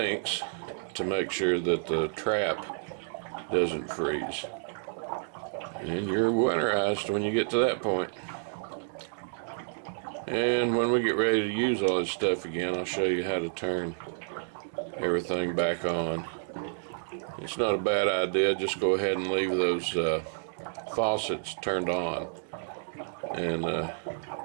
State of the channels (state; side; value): silent; left; digital silence